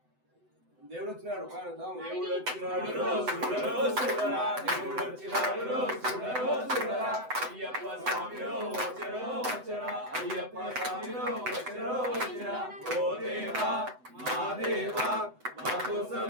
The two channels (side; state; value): left; late; 7.9 ms